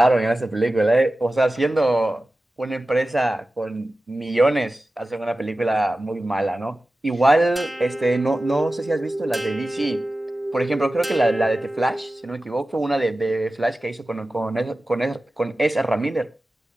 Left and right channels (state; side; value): normal; both; correlation 0.95